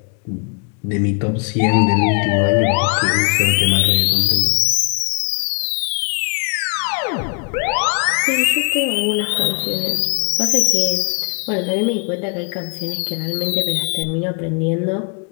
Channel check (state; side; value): quieter; right; 39.7 dB